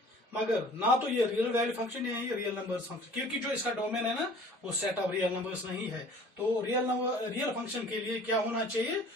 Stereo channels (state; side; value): normal; both; correlation 0.49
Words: मगर ना तो ये रियल वैल्यू फंक्शन है ये रियल नंबर्स फंक्शन, क्योंकि जो इसका डोमेन है ना वो सेट ऑफ रियल नंबर्स नहीं है। तो रियल फंक्शन के लिए क्या होना चाहिए?